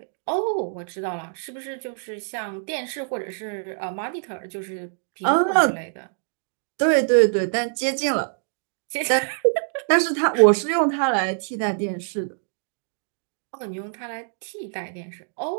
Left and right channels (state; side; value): silent; left; digital silence